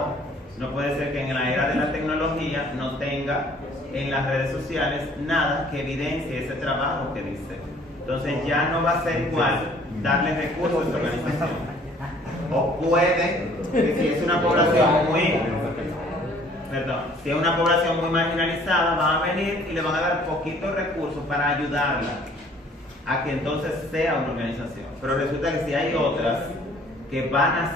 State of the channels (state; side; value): normal; both; correlation 0.57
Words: no puede ser que en la era de la tecnología no tenga en las redes sociales nada que evidencie ese trabajo que dice. Entonces ya no va a ser igual darle recursos a esa organización. O puede, que si es una población si es una población muy marginalizada, van a venir y le van a dar poquitos recursos para ayudarla a que entonces sea una organización. Pero resulta que si hay otras